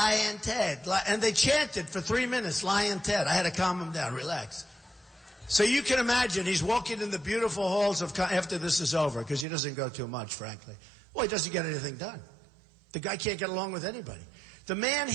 Ted. And they chanted for 3 minutes, Lyin' Ted. I had to calm him down, relax. So you can imagine he's walking in the beautiful halls of, after this is over, because he doesn't go too much, frankly. Well, he doesn't get anything done. The guy can't get along with anybody. The man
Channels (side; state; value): left; drops out; at 9.5 s